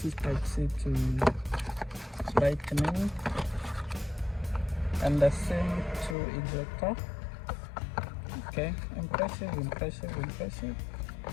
is type C to lightning, and the SIM to ejector. Okay, impressive.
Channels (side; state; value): right; drops out; at 6.2 s